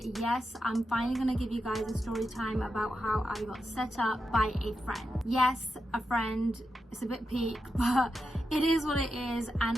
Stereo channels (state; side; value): normal; both; correlation 0.87